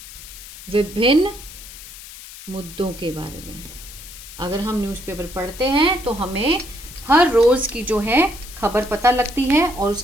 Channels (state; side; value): noise; left; hiss, 15 dB below the sound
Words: विभिन्न मुद्दों के बारे में। अगर हम न्यूज़पेपर पढ़ते हैं तो हमें हर रोज़ की जो है खबर पता लगती है, और